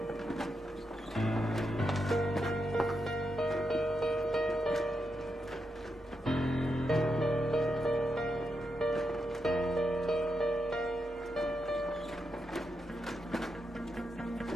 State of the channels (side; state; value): both; normal; correlation 0.85